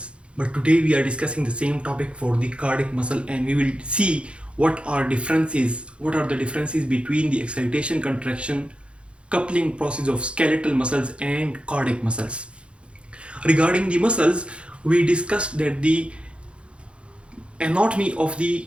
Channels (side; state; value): left; late; 0.059 ms